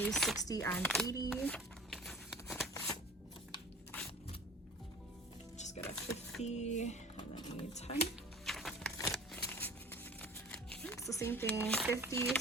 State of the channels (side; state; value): both; normal; correlation 0.41